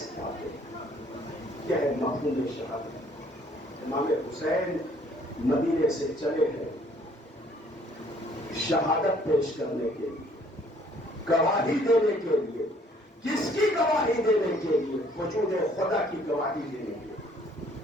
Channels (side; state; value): both; normal; correlation 0.60